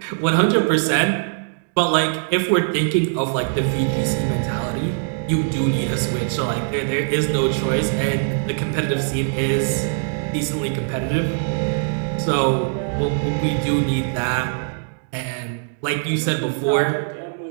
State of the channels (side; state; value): left; silent; digital silence